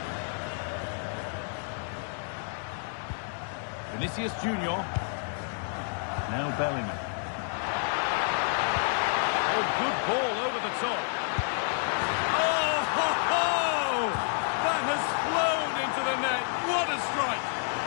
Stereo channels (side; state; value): right; silent; 58 dB below the other